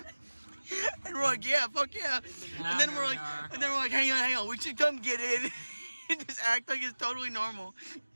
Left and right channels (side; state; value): both; inverted; correlation -1.00